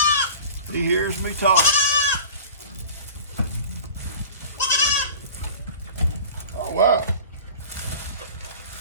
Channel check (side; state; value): both; inverted; correlation -0.40